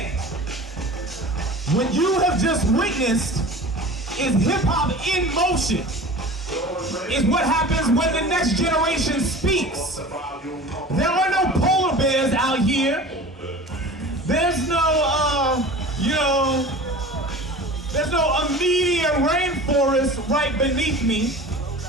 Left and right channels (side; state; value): both; normal; correlation 0.38